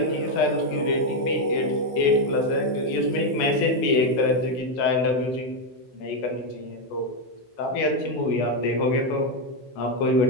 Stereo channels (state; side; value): late; right; 16 ms